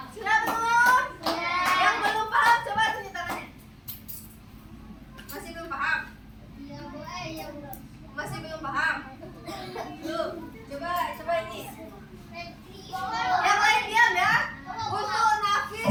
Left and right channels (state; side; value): identical; both; correlation 1.00